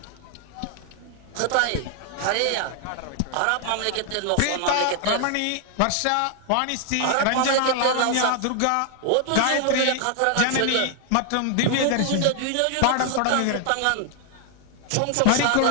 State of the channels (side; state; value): both; different; correlation 0.00